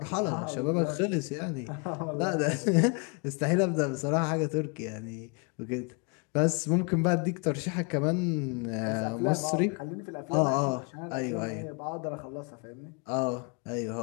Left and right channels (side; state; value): right; quieter; 33.5 dB